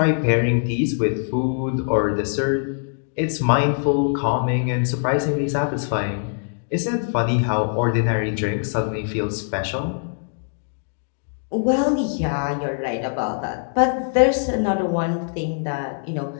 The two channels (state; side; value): silent; right; digital silence